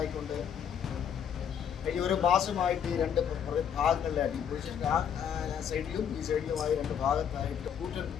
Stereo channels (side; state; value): right; quieter; 8.3 dB